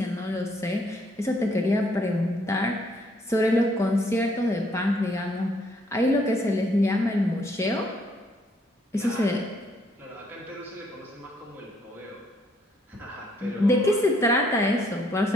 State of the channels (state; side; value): normal; both; correlation 0.68